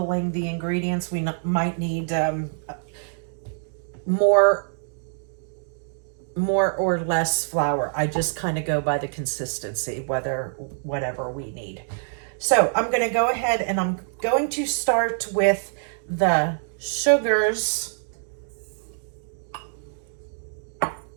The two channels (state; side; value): silent; left; digital silence